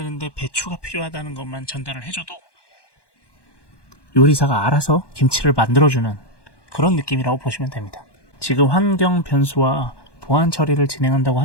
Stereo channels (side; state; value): right; late; 1.1 ms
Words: 배추가 필요하다는 것만 전달을 해줘도 요리사가 알아서 김치를 만들어주는 그런 느낌이라고 보시면 됩니다. 지금 환경 변수와 보안 처리를 진행한다고